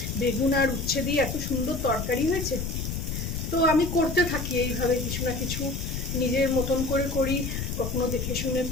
বেগুন আর উচ্ছে দিয়ে এত সুন্দর তরকারি হয়েছে। তো আমি করতে থাকি এইভাবে কিছু না কিছু, নিজের মতন করে করি, কখনো দেখে শুনে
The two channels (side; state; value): left; noise; rumble, 4 dB below the sound